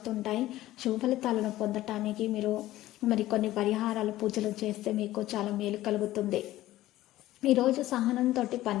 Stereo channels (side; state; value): right; quieter; 15.5 dB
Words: శుభ ఫలితాలను పొందటానికి మీరు కొన్ని పరిహారాలు పూజలు చేస్తే మీకు చాలా మేలు కలుగుతుంది. ఈరోజు సహనంతో